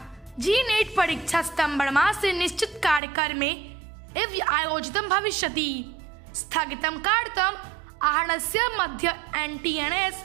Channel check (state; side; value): drops out; left; at 3.0 s